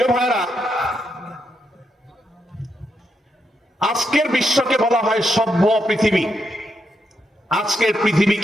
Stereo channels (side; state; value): both; normal; correlation 0.82